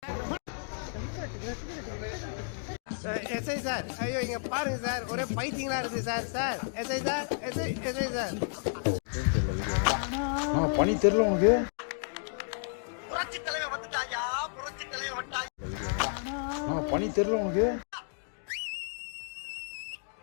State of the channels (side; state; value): right; silent; digital silence